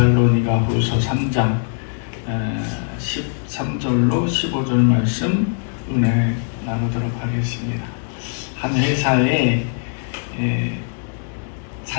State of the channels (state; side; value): silent; right; digital silence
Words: 후서 3장 13절로 15절 말씀 은혜 나누도록 하겠습니다. 한 회사에